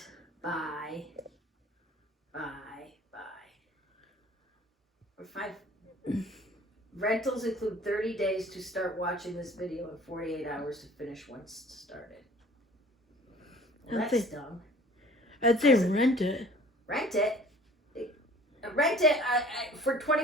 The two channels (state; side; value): normal; both; correlation 0.49